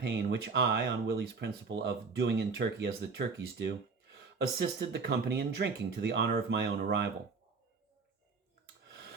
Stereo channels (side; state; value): left; quieter; 4.8 dB